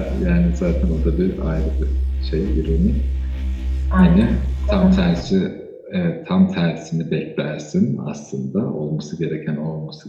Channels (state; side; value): identical; both; correlation 1.00